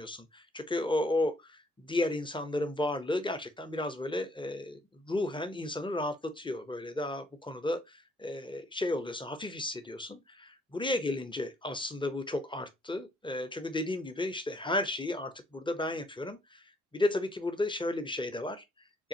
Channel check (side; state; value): both; normal; correlation 0.67